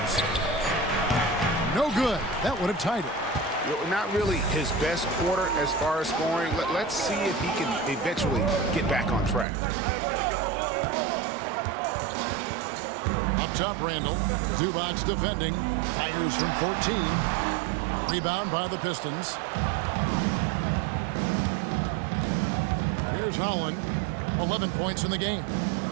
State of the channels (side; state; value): left; drops out; at 9.5 s